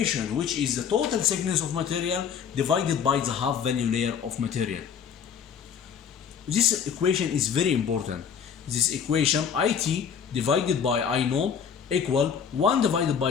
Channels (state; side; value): quieter; right; 7.4 dB